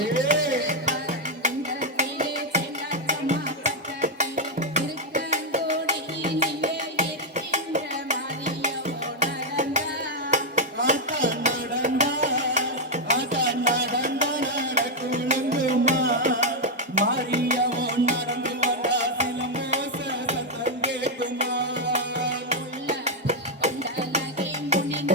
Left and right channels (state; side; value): normal; both; correlation 0.01